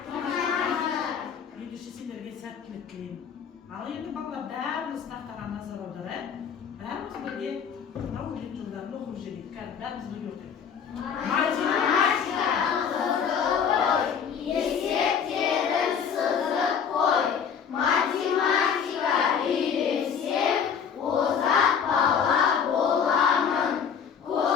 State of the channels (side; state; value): right; quieter; 7.2 dB